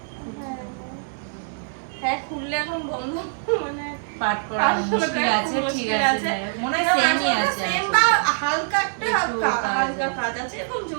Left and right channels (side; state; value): left; silent; 58 dB below the other